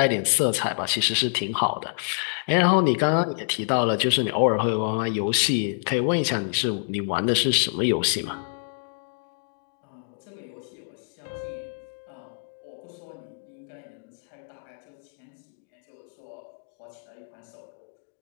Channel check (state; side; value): silent; right; digital silence